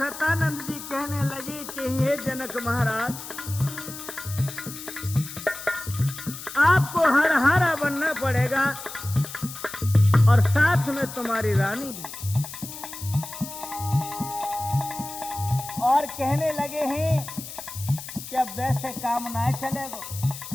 जी कहने लगे कि हे जनक महाराज, आपको हर हारा बनना पड़ेगा और साथ में तुम्हारी रानी भी। और कहने लगे हैं कि अब वैसे काम ना चलेगा,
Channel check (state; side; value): noise; left; hiss, 11 dB below the sound